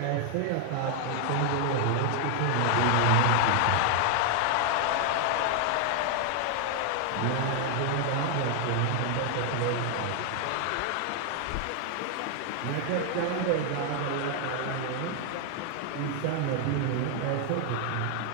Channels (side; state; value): both; different; correlation 0.00